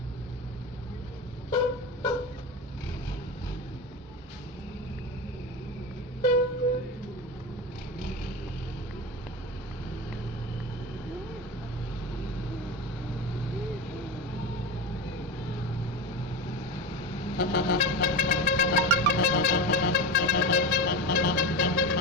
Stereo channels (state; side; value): normal; both; correlation 0.22